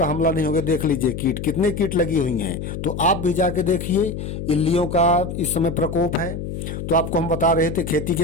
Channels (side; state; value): left; noise; hum, 6 dB below the sound